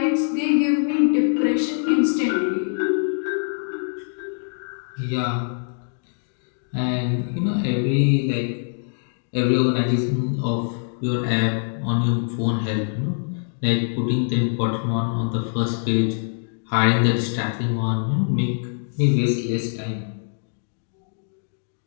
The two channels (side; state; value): right; silent; digital silence